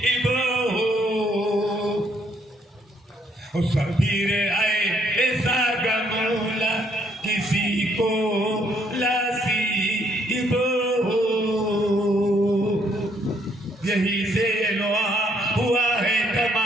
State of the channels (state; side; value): normal; both; correlation 0.69